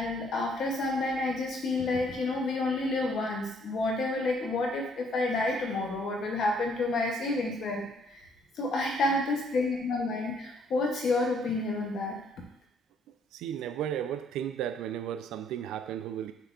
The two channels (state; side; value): normal; both; correlation 0.65